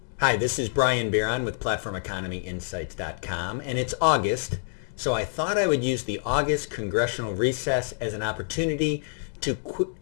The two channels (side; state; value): right; silent; digital silence